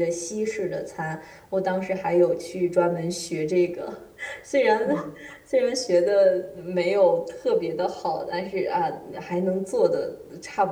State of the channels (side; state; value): both; identical; correlation 1.00